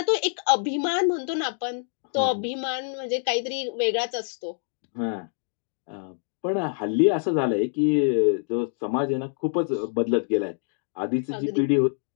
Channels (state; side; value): silent; right; digital silence